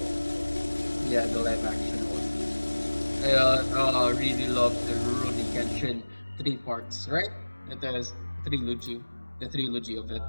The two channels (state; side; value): inverted; both; correlation -1.00